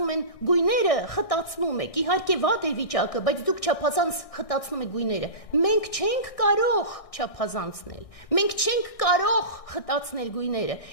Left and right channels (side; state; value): right; late; 1.6 ms